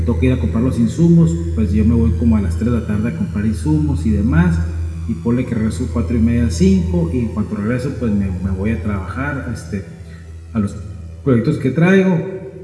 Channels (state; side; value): identical; both; correlation 1.00